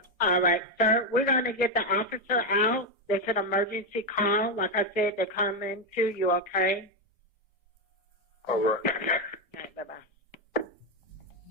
All right, sir, we're going to get the officer out. It's an emergency call. Like I said, they're coming to you, okay? All right. All right, bye-bye.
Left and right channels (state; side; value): normal; both; correlation 0.06